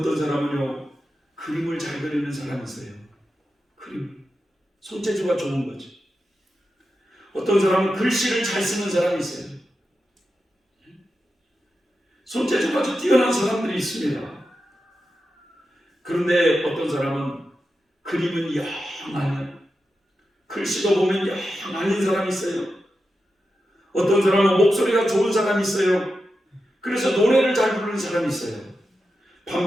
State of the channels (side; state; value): both; normal; correlation 0.90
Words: 사람은요, 그림을 잘 그리는 사람이 있어요. 그림, 손재주가 좋은 거지. 어떤 사람은 글씨를 잘 쓰는 사람이 있어요. 손재주가 아주 뛰어난 사람들이 있습니다. 그런데 어떤 사람은 그림은 영 아니야. 글씨도 보면 영 아닌 사람이 있어요. 어떤 사람은 목소리가 좋은 사람이 있어요. 그래서 노래를 잘 부르는 사람이 있어요.